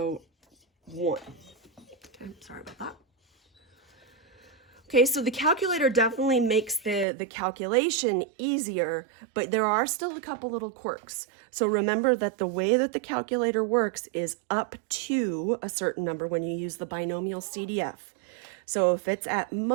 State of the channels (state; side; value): drops out; left; at 7.1 s